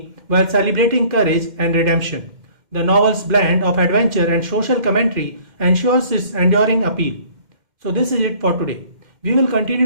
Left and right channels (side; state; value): left; late; 2.1 ms